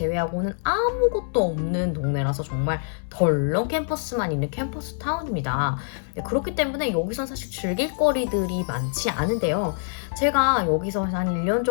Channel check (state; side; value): silent; right; 62 dB below the other